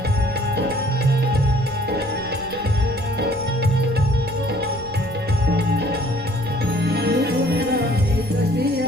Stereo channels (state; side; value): noise; right; rumble, 17 dB below the sound